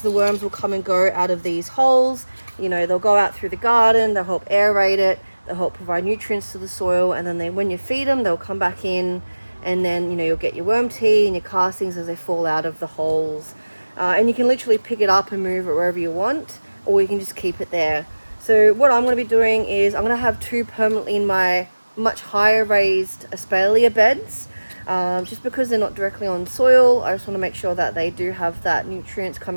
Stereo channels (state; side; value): inverted; both; correlation -1.00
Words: the worms will come and go out of these holes. They'll go out through the garden, they'll help aerate it, they'll help provide nutrients to the soil, and then when you feed them, they'll come back in, and then you'll get your worm tea and your castings as they fall out of the holes. And you can literally pick it up and move it wherever you want, or you can just keep it there. So what I'm going to be doing is I'm going to have two permanently in my much higher raised espalier beds, just because they're not directly on soil. I just want to make sure that they do have that nutrients